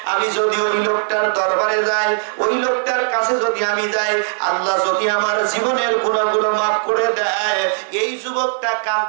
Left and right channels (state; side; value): silent; left; 67 dB below the other